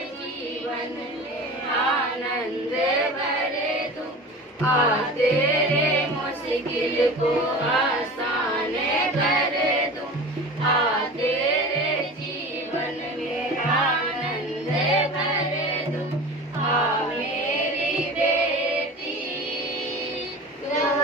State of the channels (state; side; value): normal; both; correlation 0.35